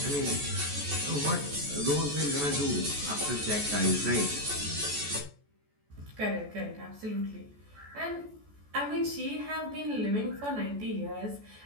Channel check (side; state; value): left; late; 14 ms